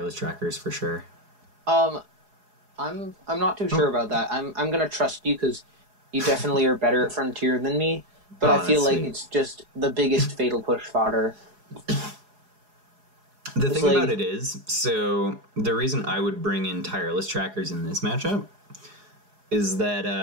Trackers for sure. I'm not too sure about that. I'm gonna trust you because you definitely are better at Frontier than me. But I feel like it's just the biggest fatal push fodder. The thing about it is, so the reason I would bring in Tireless Trackers in this matchup is that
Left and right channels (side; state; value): left; late; 4.8 ms